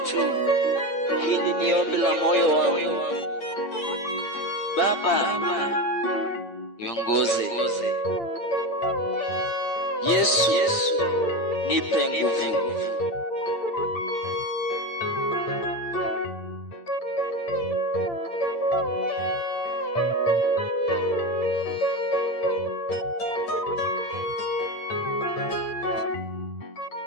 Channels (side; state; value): right; late; 8.8 ms